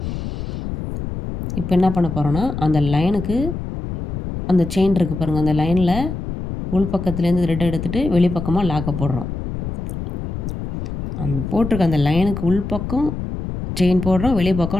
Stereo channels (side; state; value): left; noise; rumble, 6 dB below the sound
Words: இப்போ என்ன பண்ண போகிறோன்னா, அந்த லைனுக்கு அந்த செயின் இருக்குது பாருங்கள், அந்த லைனில் உள் பக்கத்துலேருந்து த்ரெட் எடுத்துகிட்டு வெளிப்பக்கமாக லாக்கை போடுறோம். அந்த போட்டிருக்க அந்த லைனுக்கு உள் பக்கம் செயின் போடுறோம், வெளி